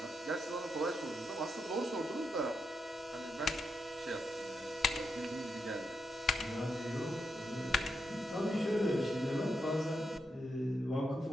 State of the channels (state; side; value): normal; both; correlation 0.83